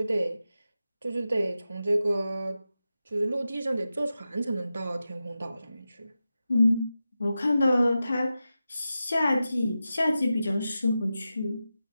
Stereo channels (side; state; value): both; inverted; correlation -0.92